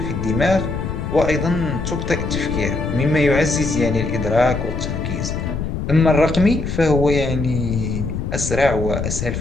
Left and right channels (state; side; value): noise; left; rumble, 4 dB below the sound